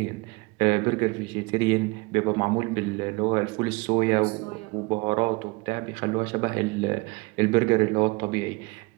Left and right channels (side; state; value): left; quieter; 26.1 dB